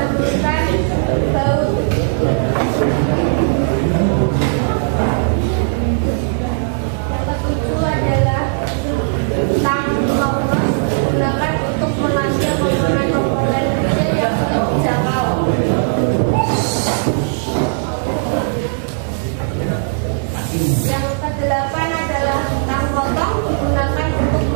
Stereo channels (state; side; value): silent; left; digital silence